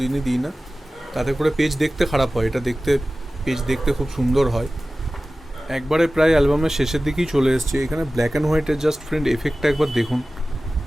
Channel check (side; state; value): both; normal; correlation 0.96